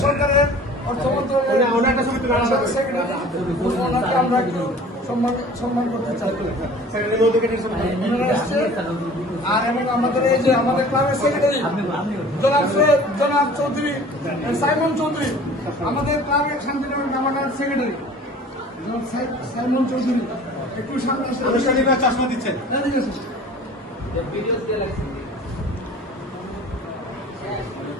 সরকারের অর্থ মন্ত্রণালয়ের সেক্রেটারি, আমরা একটু সম্মান করতে চাই। আর এবং আমাদের এই যে আমাদের ক্লাবের সেক্রেটারি জনাব চৌধুরী সাইমন চৌধুরী, আমাদের ক্লাবের শান্তিনগর নামানার সেক্রেটারি সাইমন চৌধুরী, একটু সামনে চশমা দিচ্ছেন।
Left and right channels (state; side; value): normal; both; correlation 0.45